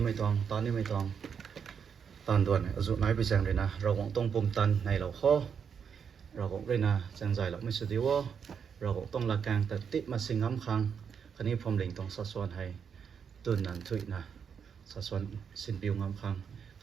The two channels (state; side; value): quieter; left; 7.0 dB